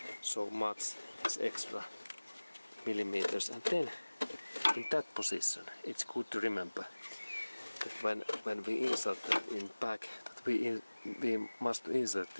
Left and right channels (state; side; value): inverted; both; correlation -1.00